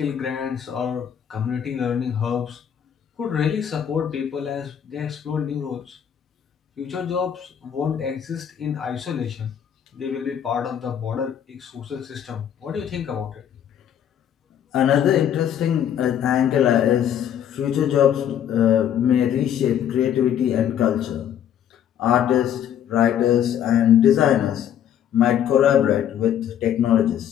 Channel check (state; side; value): quieter; right; 9.6 dB